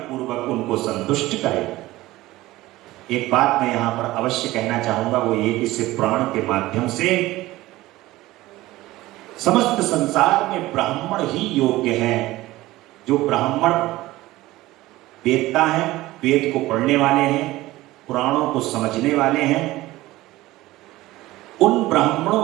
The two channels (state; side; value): quieter; left; 17.7 dB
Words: पूर्वक उनको संतुष्ट करें। एक बात मैं यहां पर अवश्य कहना चाहूंगा, वो ये कि इस प्राण के माध्यम से समस्त संसार में ब्राह्मण ही योग्य हैं। जो ब्राह्मण वेदता है, वेद को पढ़ने वाले हैं, पुराणों को समझने वाले हैं, उन ब्राह्मणों